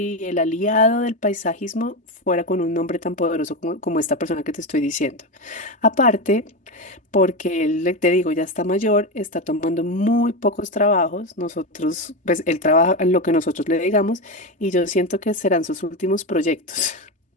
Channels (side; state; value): both; normal; correlation 0.15